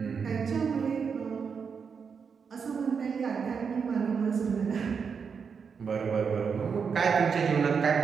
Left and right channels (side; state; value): left; quieter; 6.1 dB